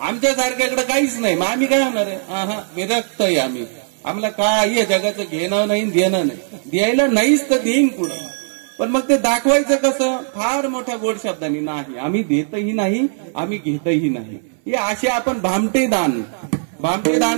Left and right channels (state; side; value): silent; left; 60 dB below the other